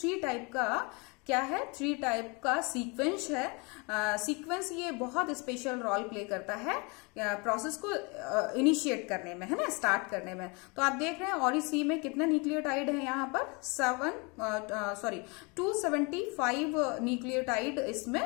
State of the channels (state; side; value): quieter; right; 29.8 dB